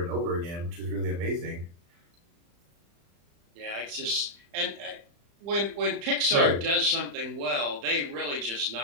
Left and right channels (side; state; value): left; late; 35 ms